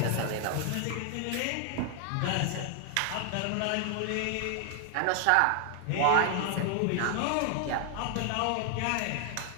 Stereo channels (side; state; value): both; different; correlation 0.00